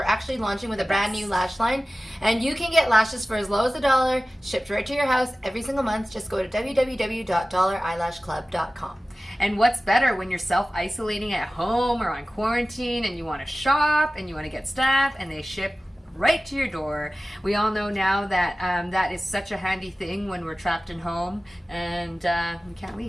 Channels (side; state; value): both; normal; correlation 0.96